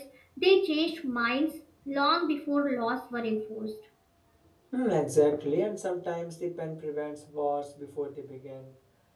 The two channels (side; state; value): both; identical; correlation 1.00